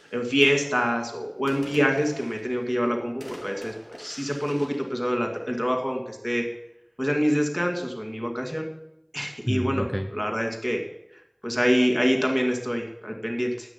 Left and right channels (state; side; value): identical; both; correlation 1.00